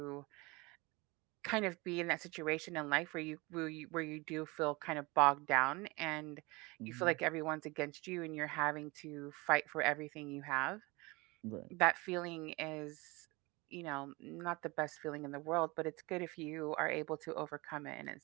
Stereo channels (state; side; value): quieter; left; 24.7 dB